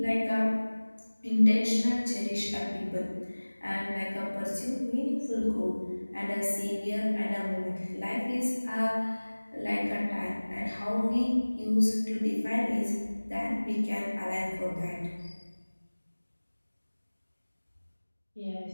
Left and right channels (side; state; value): both; inverted; correlation -1.00